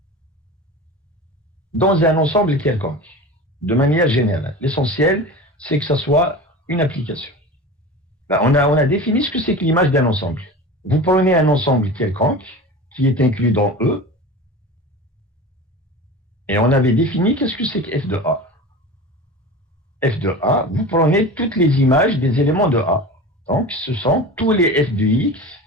dans un ensemble quelconque, de manière générale. L'essentiel, c'est que ça soit une application. On a défini ce que c'est que l'image d'un ensemble. Vous prenez un ensemble quelconque qui est inclus dans E, et on avait défini qu'est-ce que c'est que F de A. F de A, vous prenez toutes les images des éléments de A. Donc, ce sont tous les F de X,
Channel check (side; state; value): both; normal; correlation 0.33